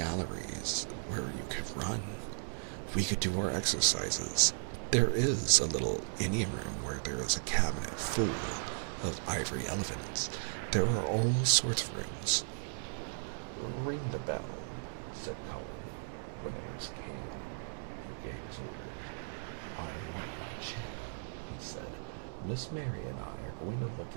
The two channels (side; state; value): left; silent; digital silence